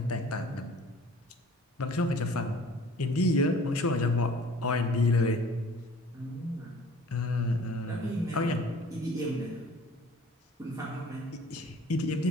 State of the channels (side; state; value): both; normal; correlation 0.49